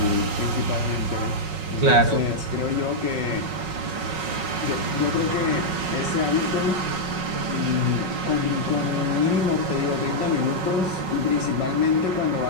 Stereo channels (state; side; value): late; left; 5.4 ms